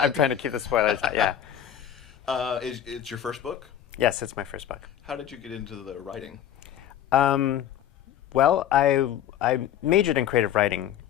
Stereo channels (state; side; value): quieter; right; 10.4 dB